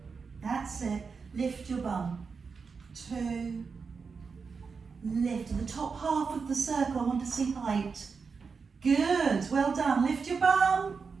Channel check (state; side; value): quieter; left; 5.2 dB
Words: That's it. Lift your bum. 2. Lift. The top half of the circle, I want to see height. Good. Well done. Lift your bum.